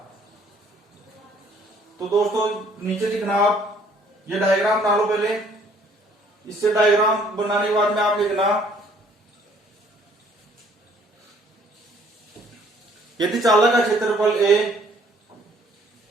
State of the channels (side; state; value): both; normal; correlation 0.60